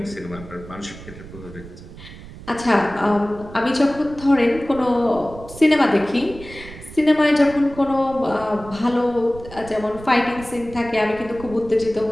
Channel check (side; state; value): right; noise; rumble, 16 dB below the sound